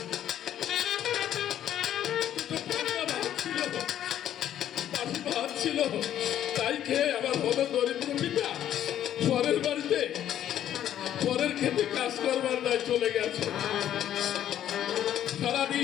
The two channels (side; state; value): right; quieter; 11.1 dB